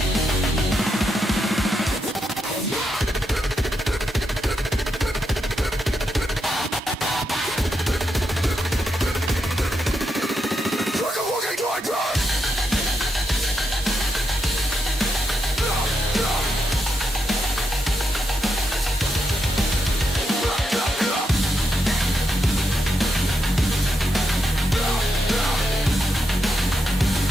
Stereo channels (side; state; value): both; normal; correlation 0.83